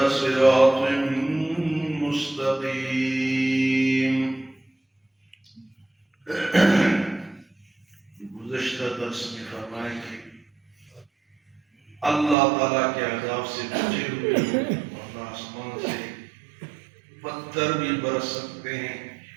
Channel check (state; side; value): drops out; left; at 12.4 s